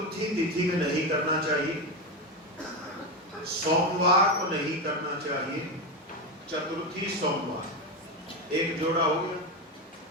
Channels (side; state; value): both; normal; correlation 0.14